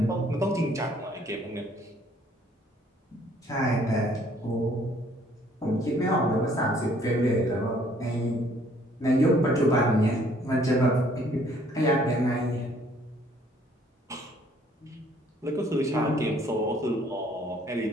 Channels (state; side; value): normal; both; correlation 0.61